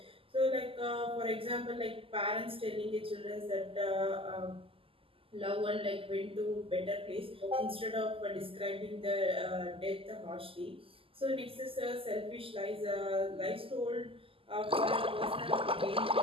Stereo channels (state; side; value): late; left; 0.26 ms